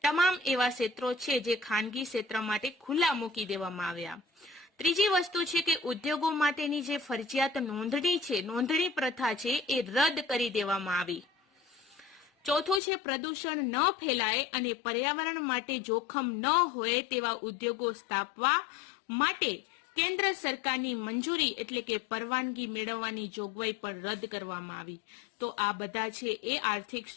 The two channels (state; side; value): drops out; right; at 12.8 s